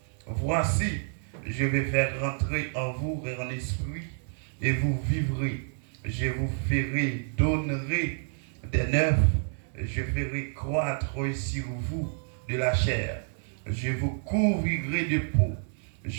Voici, je vais faire rentrer en vous un esprit et vous vivrez. Je vous ferai donner des neufs, je ferai croître sur vous de la chair. Je vous couvrirai de peau.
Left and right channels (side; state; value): left; silent; digital silence